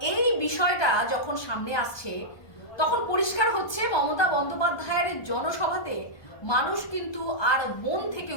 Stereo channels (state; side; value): late; right; 1.2 ms